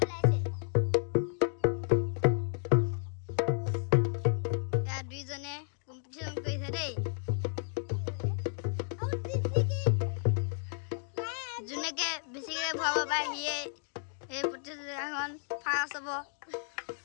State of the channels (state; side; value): silent; right; 56 dB below the other